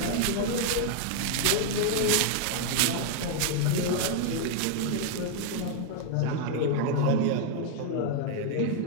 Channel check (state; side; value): different; both; correlation 0.00